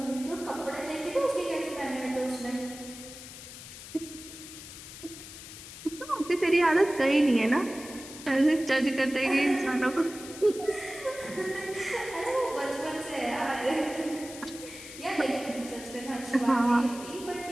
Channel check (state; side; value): noise; left; hiss, 14 dB below the sound